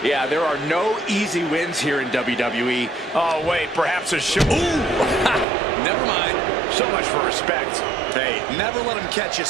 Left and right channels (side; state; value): left; drops out; at 5.5 s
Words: Yeah, there are no easy wins here in WWE. Oh, wait, perhaps a show. Ooh, never mind. So much for respect. Hey, never let him catch you